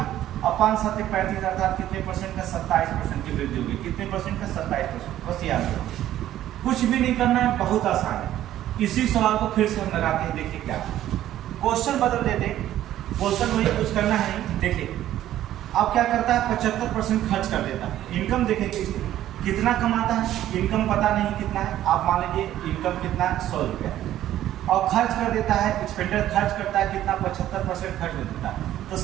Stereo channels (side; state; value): left; quieter; 12.8 dB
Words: और 5 7 35, अर्थात कितने परसेंट का? 27% की वृद्धि होगी। कितने परसेंट का? 27%। बस याद रखो, कुछ भी नहीं करना है, बहुत आसान है। इसी सवाल को फिर से हम लगाते हैं, देखिए क्या क्वेश्चन बदल देते, क्वेश्चन वही कुछ करना है नहीं। देखिए अब क्या करता है 75% खर्च कर देता है। इनकम देखेंगे कितना कमाता है, इनकम पता नहीं कितना है, आप मान लीजिए इनकम कितना है 100 रुपया, और खर्च कर देता है, एक्सपेंडिचर खर्च करता है कितना 75% खर्च कर देता है। तो